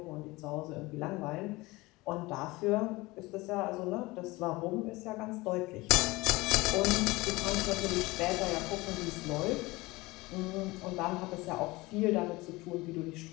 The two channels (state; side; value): quieter; right; 21.7 dB